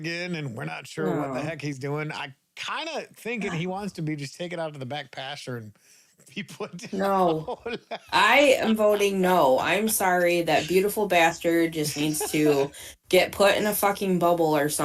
and we're not sure what the No, heck he's doing. I kind of thinking he wants to be just take it out to the back pasture and be put no. down. I am voting no. I'm sorry. That beautiful bastard just needs to get put in a fucking bubble or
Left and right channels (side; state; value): both; identical; correlation 1.00